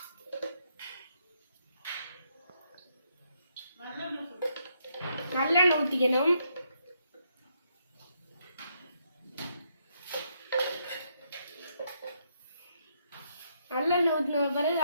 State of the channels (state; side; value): inverted; both; correlation -0.75